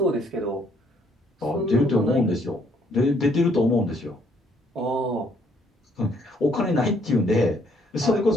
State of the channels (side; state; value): both; normal; correlation 0.67